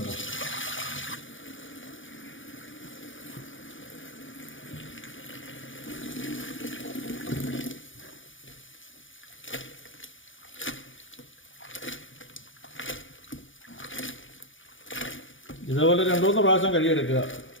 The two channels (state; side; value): late; right; 0.57 ms